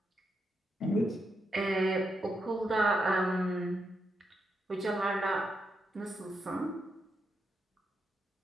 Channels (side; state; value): both; normal; correlation 0.83